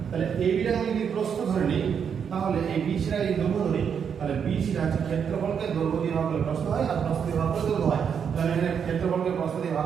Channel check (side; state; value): left; quieter; 7.3 dB